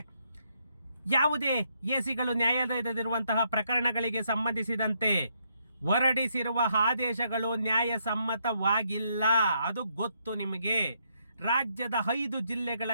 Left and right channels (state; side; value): inverted; both; correlation -0.75